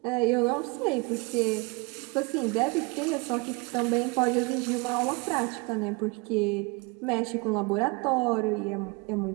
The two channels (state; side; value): quieter; left; 28.0 dB